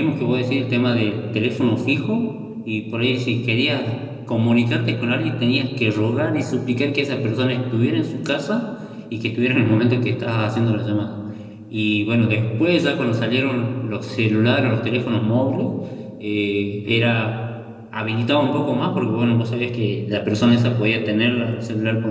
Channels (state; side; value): identical; both; correlation 1.00